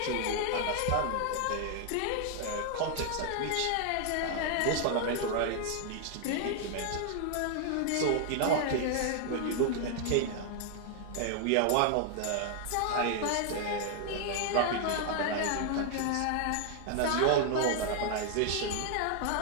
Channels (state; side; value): different; both; correlation 0.00